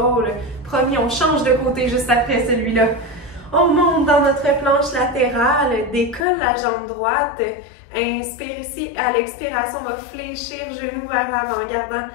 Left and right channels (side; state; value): right; drops out; at 6.2 s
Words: Promis, on change de côté juste après celui-là. On monte dans notre planche latérale, décolle la jambe droite. Inspire ici, à l'expiration, on va fléchir genou vers l'avant, gardant